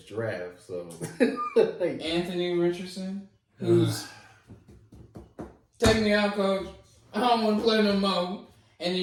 draft. So Anthony Richardson, who's take me out, coach. I don't want to play no more. And then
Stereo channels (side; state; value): both; identical; correlation 1.00